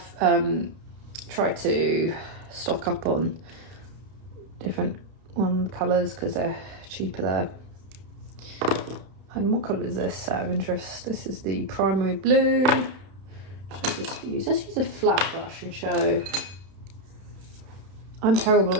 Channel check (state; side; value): late; left; 31 ms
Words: tried to stock up on different colours because they're cheaper there. And what colour is this out of interest? This is the primary blue. Let's use a flat brush and show. I'm terrible